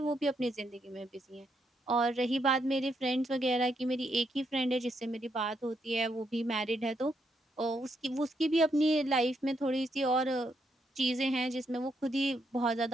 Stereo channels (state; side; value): normal; both; correlation 0.78